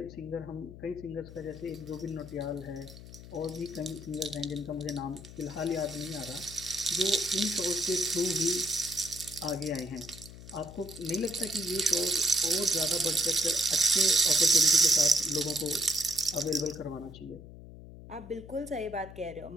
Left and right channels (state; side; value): noise; left; hum, 15 dB below the sound